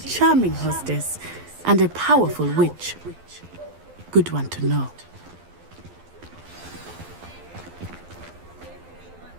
hostess and a powerful witch. Good one to know.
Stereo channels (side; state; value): left; late; 12 ms